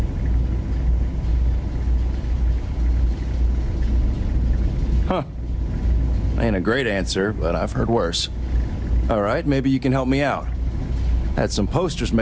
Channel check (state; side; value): identical; both; correlation 1.00